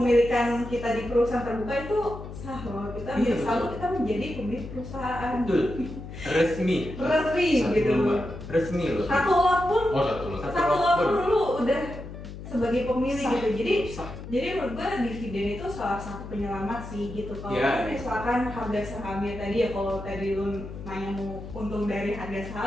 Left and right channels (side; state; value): left; noise; hum, 11 dB below the sound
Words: kita di perusahaan terbuka itu sah loh, kita selalu kita menjadi pemilik perusahaan. Betul. Resmi gitu. Resmi loh. Satu lot pun lu udah sebagai pemilik gitu. Jadi menurut gue dividen itu salah satu penyelamat sih gitu. Kalau misalkan harga sahamnya tadi ya, kalau tadi lu nanya mau untung dari harga